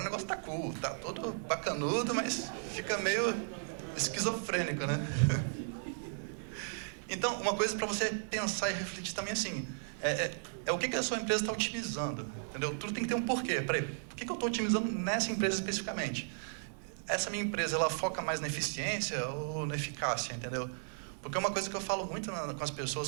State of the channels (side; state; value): left; silent; digital silence